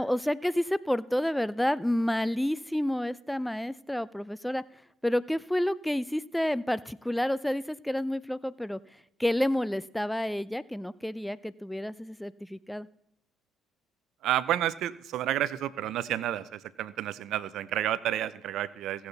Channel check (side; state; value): both; normal; correlation 0.86